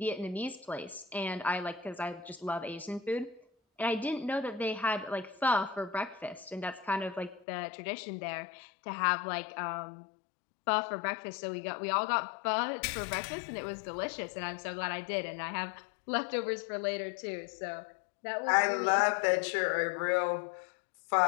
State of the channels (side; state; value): right; drops out; at 7.5 s